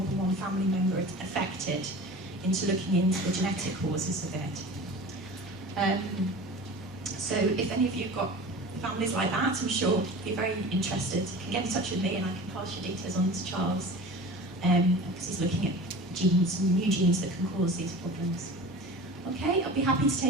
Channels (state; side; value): normal; both; correlation 0.37